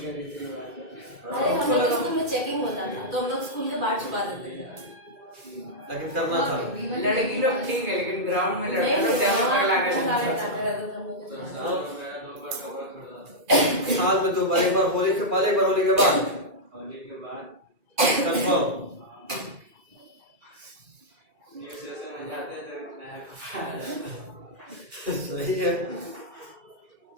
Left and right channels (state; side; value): late; left; 2.2 ms